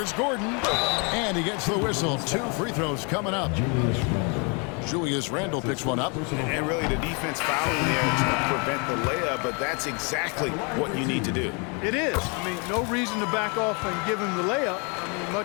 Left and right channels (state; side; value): quieter; right; 34.0 dB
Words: Gordon. And he gets the whistle. 2 free throws coming up. Julius Randle picks one up. And really the defense fouling there to prevent the layup, but that's exactly what you need to do. It is. I mean, no reason to back off and give him the layup. I mean,